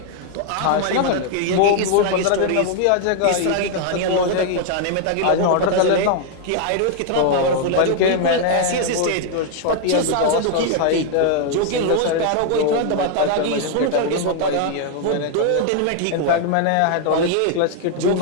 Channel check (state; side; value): different; both; correlation 0.00